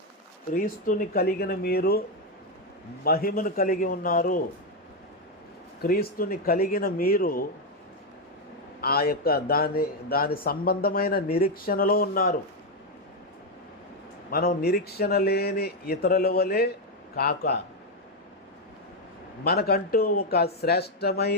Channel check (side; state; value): both; normal; correlation 0.04